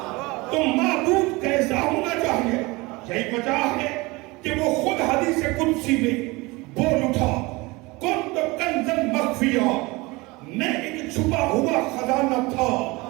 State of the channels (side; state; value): left; quieter; 23.4 dB